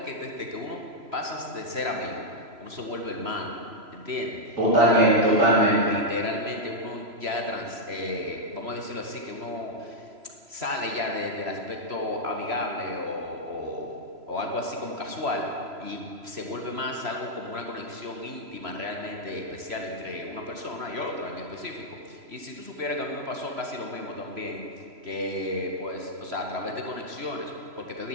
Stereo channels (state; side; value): late; left; 3.0 ms